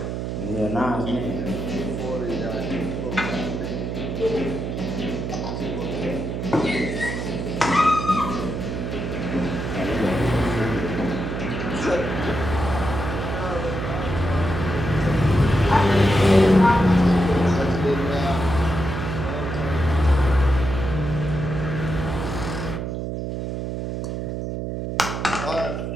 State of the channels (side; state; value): right; noise; hum, 4 dB below the sound